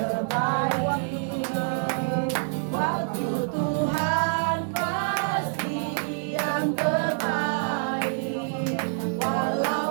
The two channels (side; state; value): left; silent; digital silence